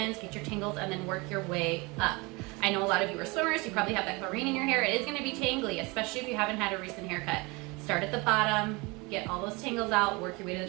get your tangles, and then work your way up. I know a lot of you are swimmers, you probably have that chlorine in your hair. It is gonna be tangly, especially if you haven't had a recent haircut. Start at the bottom, get all those tangles out, work your way to the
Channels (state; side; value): quieter; left; 26.1 dB